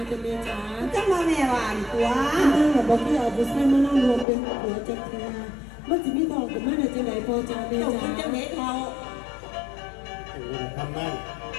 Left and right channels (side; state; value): right; drops out; at 4.2 s